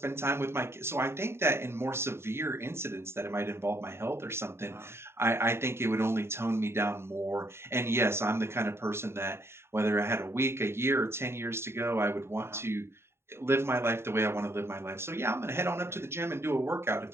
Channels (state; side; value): late; left; 0.12 ms